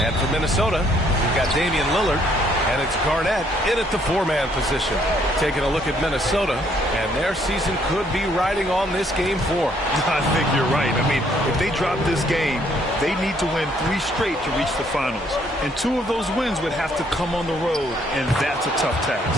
And for Minnesota, we've got Damian Lillard. And it's Garnett in at the four-man position. Taking a look at Minnesota, and their season could be riding on this Game 4. I think you're right. I mean, if they drop this game, they need to win 3 straight to reach the finals. And 2 of those wins would have to come on the road, and that's a tough task.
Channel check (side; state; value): both; normal; correlation 0.67